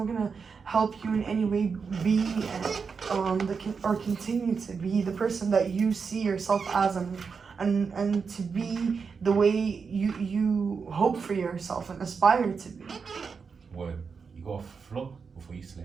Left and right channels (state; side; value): quieter; left; 5.5 dB